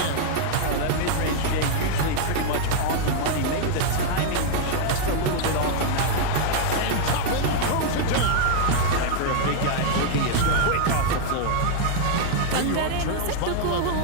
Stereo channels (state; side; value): different; both; correlation -0.01